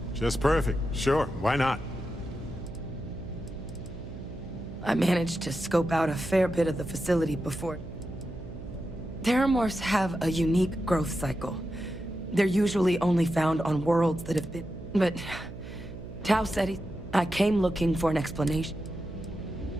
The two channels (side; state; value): right; noise; hum, 12 dB below the sound